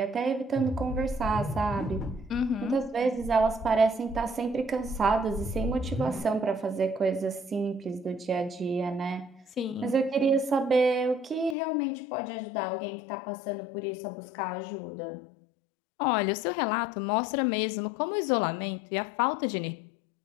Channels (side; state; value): right; drops out; at 11.6 s